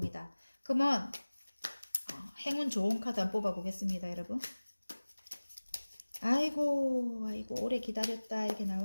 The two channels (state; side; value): inverted; both; correlation -1.00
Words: 그러면 행운 좋은 카드 한번 뽑아 보겠습니다. 여러분 아이고 오래 기다렸다 이렇게